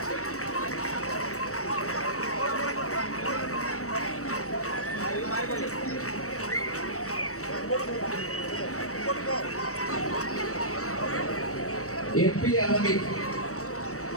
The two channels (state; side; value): late; right; 0.65 ms